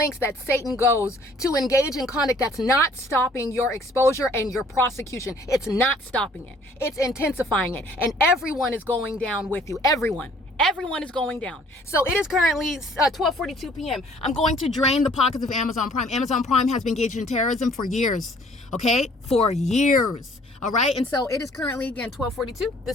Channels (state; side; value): normal; both; correlation 0.57